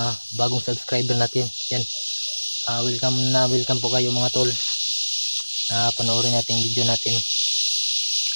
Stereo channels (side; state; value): both; inverted; correlation -1.00